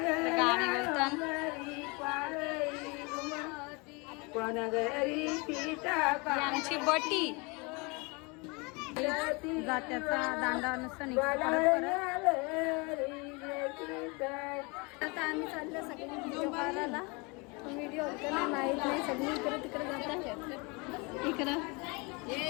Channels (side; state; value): right; quieter; 28.8 dB